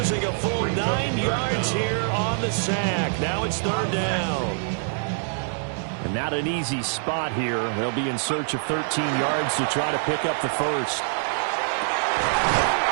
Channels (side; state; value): left; silent; 55 dB below the other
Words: a full 9 yards here on the sack. Now it's 3rd down. And not an easy spot here. They'll be in search of 13 yards to try to pick up the first.